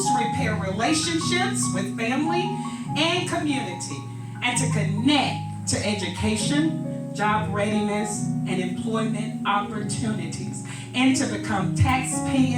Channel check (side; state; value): both; identical; correlation 1.00